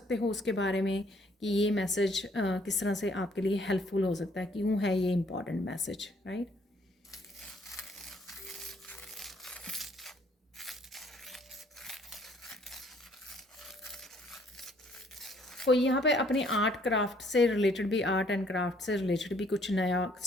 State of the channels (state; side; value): normal; both; correlation 0.63